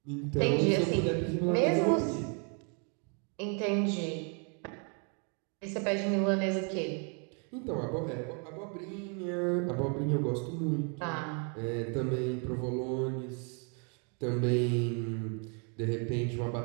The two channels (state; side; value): quieter; left; 38.3 dB